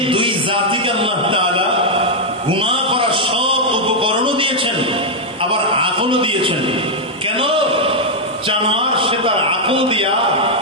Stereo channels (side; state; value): both; normal; correlation -0.02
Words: দুই জাতিকে আল্লাহ তাআলা গুনাহ করার সব উপকরণও দিয়েছেন, আবার আকলও দিয়েছেন। কেন? জানোয়ার সে তার আকল দিয়া